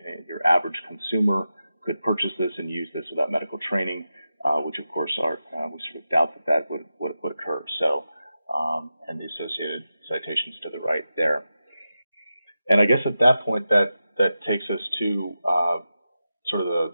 your average consumer could purchase this and use this without medical training, which of course we sort of doubt that would occur. So, and the associated citations to the right there. And I guess at that point that takes us to sort of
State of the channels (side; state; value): both; inverted; correlation -0.91